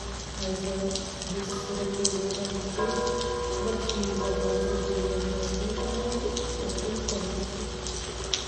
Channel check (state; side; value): identical; both; correlation 1.00